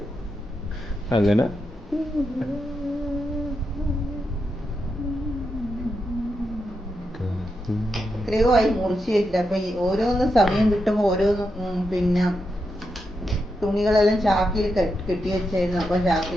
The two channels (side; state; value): both; normal; correlation 0.85